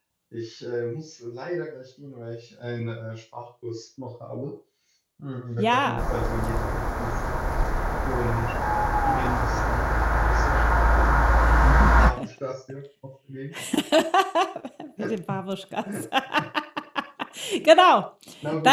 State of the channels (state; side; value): identical; both; correlation 1.00